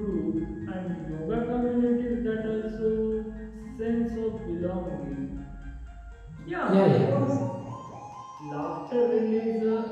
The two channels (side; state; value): both; identical; correlation 1.00